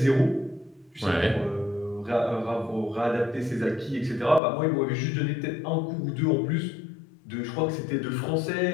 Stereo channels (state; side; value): drops out; right; at 4.4 s